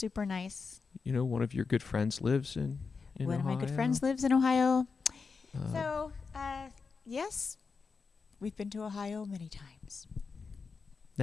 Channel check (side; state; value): right; quieter; 4.9 dB